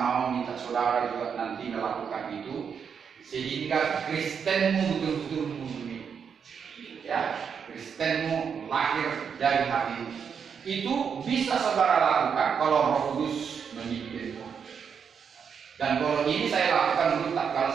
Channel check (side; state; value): left; quieter; 6.8 dB